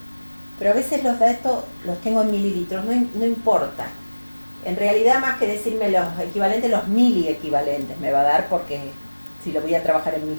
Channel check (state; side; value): inverted; both; correlation -1.00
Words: Pero a veces los datos los tengo en mililitros, no importa. En realidad, más que decirme los equivalentes, los miliequivalentes me va a dar porque si lo voy a trabajar en